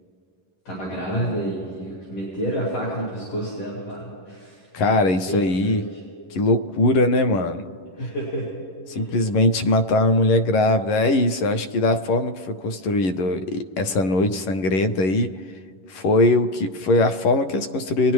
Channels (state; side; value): late; right; 11 ms